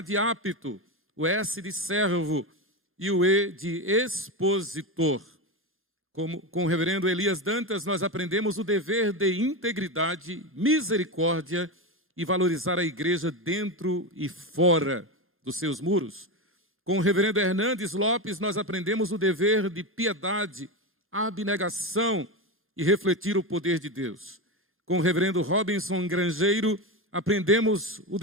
apto, o S de servo e o E de expositor. Com o reverendo Elias Dantas, nós aprendemos o dever de integridade, misericórdia e valorizar a igreja dentro e fora dos seus muros. Com o reverendo Hernandes Lopes, nós aprendemos o dever de piedade, abnegação e refletir o poder de Deus. Com o reverendo Robinson Grangeiro, aprendemos o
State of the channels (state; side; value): normal; both; correlation 0.16